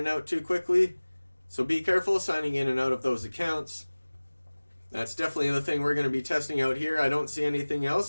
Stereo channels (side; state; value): both; inverted; correlation -1.00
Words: out too quickly. So be careful signing in and out of those accounts. That's definitely the thing we're going to be testing out here. I don't see anything